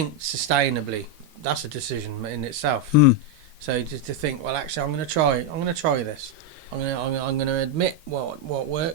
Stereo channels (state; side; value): late; left; 13 ms